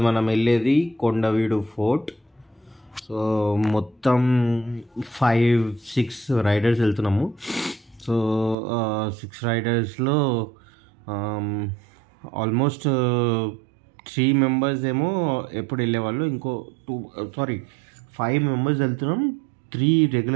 మనం వెళ్ళేది కొండవీడు ఫోర్ట్. సో మొత్తం 5-6 రైడర్స్ వెళ్తున్నాము. సో 6 రైడర్స్లో ఆల్మోస్ట్ 3 మెంబర్స్ ఏమో ఎప్పుడు వెళ్ళేవాళ్ళు, ఇంకో 5 మెంబర్స్ వెళ్తున్నాం. 3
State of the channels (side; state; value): left; drops out; at 8.6 s